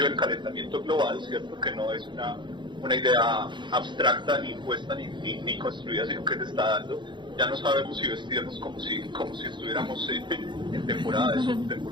del calentamiento global, ¿cierto? Que no es una idea abstracta ni impuesta ni construida, sino que se está dando. Ya no sabemos si vestirnos como si estuviéramos en temporada de sol,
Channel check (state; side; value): late; left; 0.23 ms